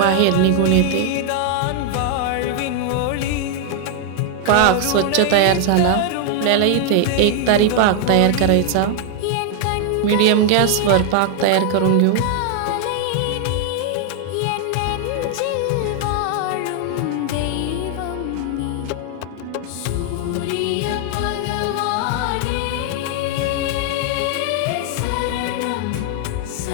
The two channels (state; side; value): different; both; correlation 0.00